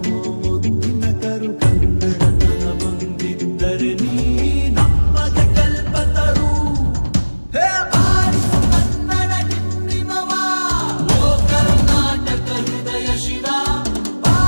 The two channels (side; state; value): both; inverted; correlation -1.00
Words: ಮುದ್ದಿನ ಕರು, ಕನ್ನಡತನ ಬಂದಿದ್ದರೆ ನೀ ನಮ್ಮದ ಕಲ್ಪತರು. ಹೇ ಬಾರಿಸು ಕನ್ನಡ ಡಿಂಡಿಮವ, ಓ ಕರ್ನಾಟಕ ಹೃದಯ ಶಿವ.